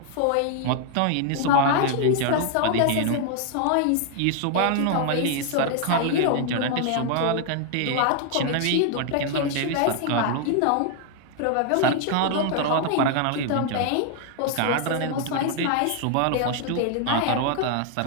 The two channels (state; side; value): different; both; correlation 0.00